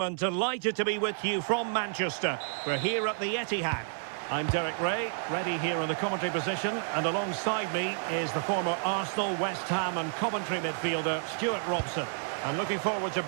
and delighted to be with you from Manchester. We're here at the Etihad. I'm Derek Ray, ready here in the commentary position, and alongside me is the former Arsenal, West Ham and Coventry midfielder Stuart Robson. I'm looking forward to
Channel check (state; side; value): silent; left; 56 dB below the other